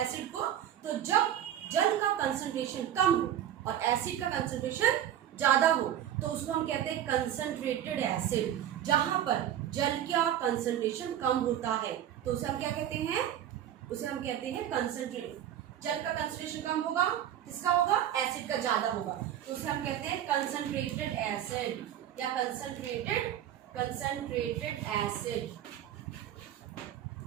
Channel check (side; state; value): left; quieter; 10.9 dB